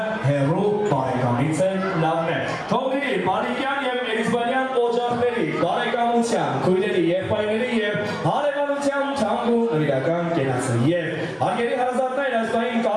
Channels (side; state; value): both; identical; correlation 1.00